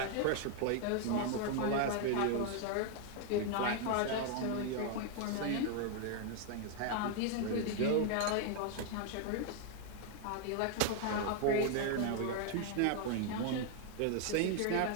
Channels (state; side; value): different; both; correlation 0.00